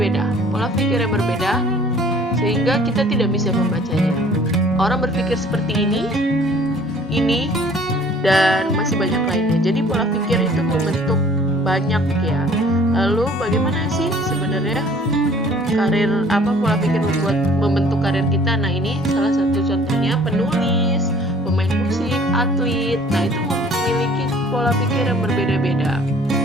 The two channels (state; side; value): normal; both; correlation 0.54